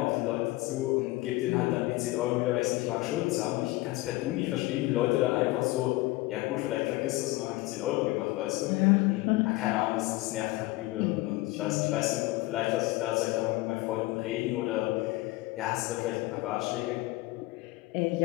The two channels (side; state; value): right; quieter; 20.0 dB